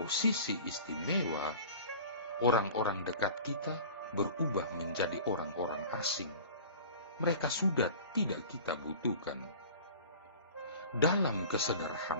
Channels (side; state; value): both; inverted; correlation -0.41